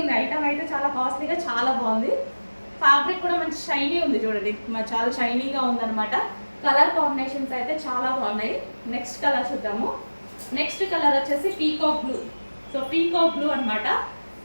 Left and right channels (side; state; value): both; inverted; correlation -1.00